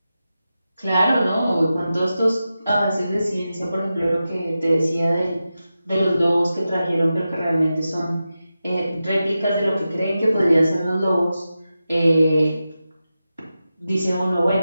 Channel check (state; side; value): inverted; both; correlation -0.92